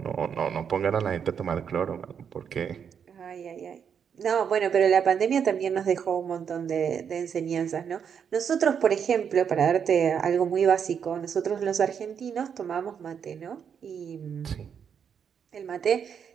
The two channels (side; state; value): left; quieter; 7.4 dB